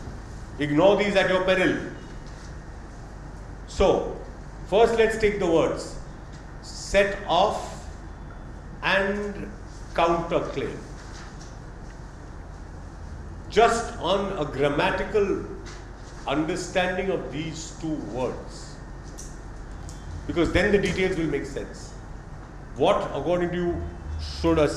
Ignore these at your peril. So, first let's take the words set off and counterclaim. Just on a grammatical understanding of these 2 words, because then the details will make sense. What, according to you, should a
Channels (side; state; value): both; identical; correlation 1.00